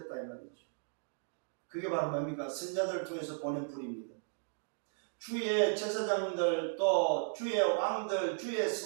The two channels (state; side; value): silent; left; digital silence